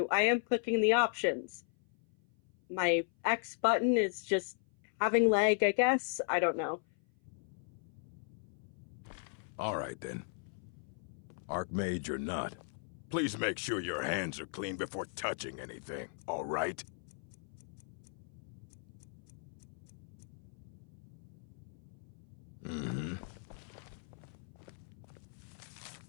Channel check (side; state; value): right; silent; 53 dB below the other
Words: I am clicking the options. My X button is just having lag, I guess. I don't know. All right, then. Archmage or not, please make sure your hands are clean before touching anything, all right? Mm-hmm.